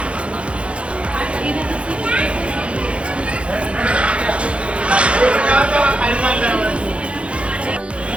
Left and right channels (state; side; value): late; left; 0.060 ms